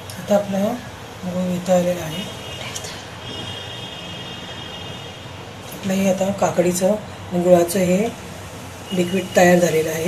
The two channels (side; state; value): both; identical; correlation 1.00